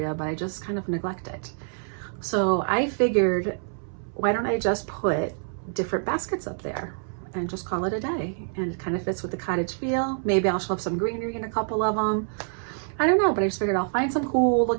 but I just kind of neglect it. So I figured, why don't I just put different baskets up there and just call it a day? And it kind of fits with the cottage feel. Maybe I'll shove some greenery in a couple of them. I don't know, but I just figured I'll find some cool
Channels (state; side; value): silent; left; 61 dB below the other